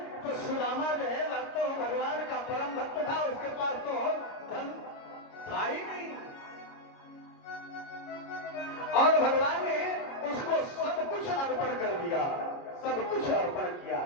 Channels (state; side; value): late; right; 29 ms